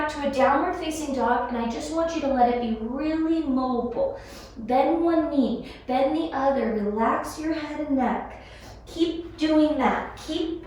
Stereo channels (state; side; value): identical; both; correlation 1.00